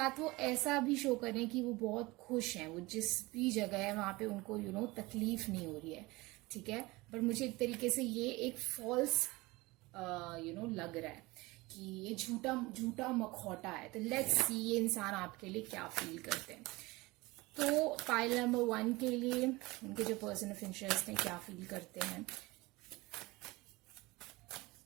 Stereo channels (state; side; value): quieter; left; 22.0 dB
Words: वो ऐसा भी शो कर रहे हैं कि वो बहुत खुश हैं, वो जिस भी जगह है वहां पे उनको तकलीफ नहीं हो रही है। ठीक है, पर मुझे एक तरीके से ये एक फॉल्स लग रहा है कि ये झूठा मखौटा है। तो लेट्स सी ये इंसान आपके लिए क्या फील करते हैं। तो पाइल नंबर 1 के लिए उनके जो पर्सन ऑफ इंटरेस्ट है क्या फील करते हैं।